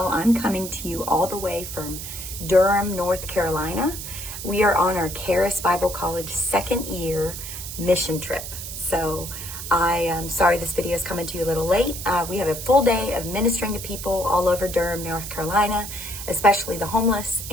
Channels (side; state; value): right; noise; hiss, 8 dB below the sound